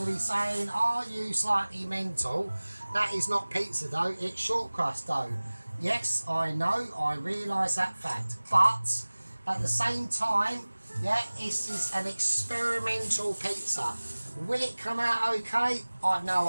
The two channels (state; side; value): inverted; both; correlation -1.00